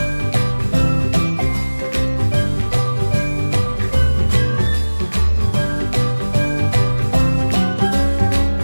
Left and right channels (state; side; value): inverted; both; correlation -1.00